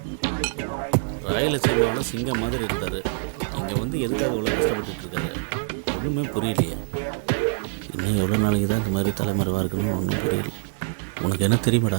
ராயலசீமாவோட சிங்கம் மாதிரி இருந்தார். இங்கே வந்து எதுக்காக இவ்வளோ கஷ்டப்பட்டு இருக்காரு ஒன்றுமே புரியலையே. இன்னும் எவ்வளோ நாளைக்கு தான் இந்த மாதிரி தலைமறைவாக இருக்குன்னு ஒன்றும் புரியல. உனக்கு என்ன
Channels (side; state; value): left; silent; digital silence